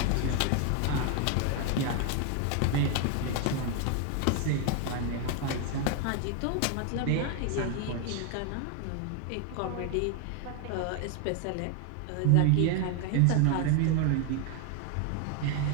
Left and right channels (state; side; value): different; both; correlation 0.01